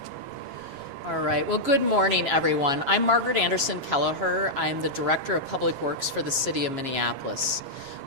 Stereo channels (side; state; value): left; late; 7.3 ms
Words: All right. Well, good morning, everyone. I'm Margaret Anderson Kelleher. I'm the Director of Public Works for the City of Minneapolis.